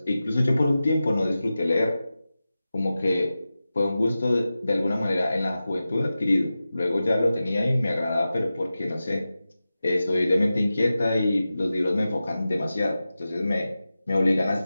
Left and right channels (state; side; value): inverted; both; correlation -0.94